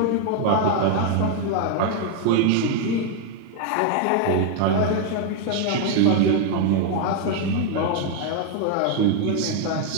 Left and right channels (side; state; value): both; different; correlation 0.00